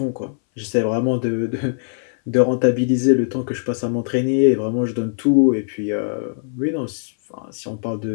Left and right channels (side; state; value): right; silent; 62 dB below the other